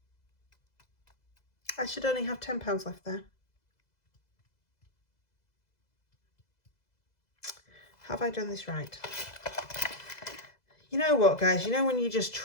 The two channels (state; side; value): late; right; 2.0 ms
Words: I should only have £10 left there. Have I done this right? You know what, guys? You know when you just